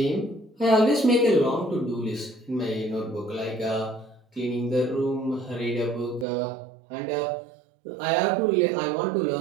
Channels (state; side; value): drops out; left; at 6.2 s